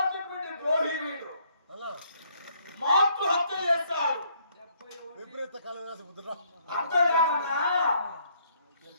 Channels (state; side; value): inverted; both; correlation -0.67